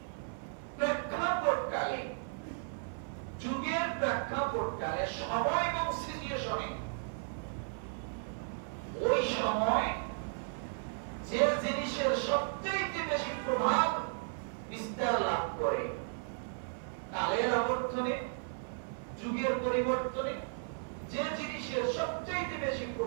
প্রেক্ষাপটকালে, যুগের প্রেক্ষাপটকালে, সময় এবং সিচুয়েশনে ওই সময় যে জিনিসের সবচেয়ে বেশি প্রভাব বিস্তার লাভ করে, কালের আবর্তনে, যুগের পরিবর্তনে যে জিনিসের সবচেয়ে বেশি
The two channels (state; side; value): silent; left; 54 dB below the other